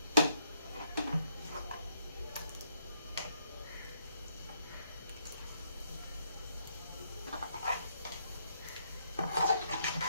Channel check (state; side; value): inverted; both; correlation -0.73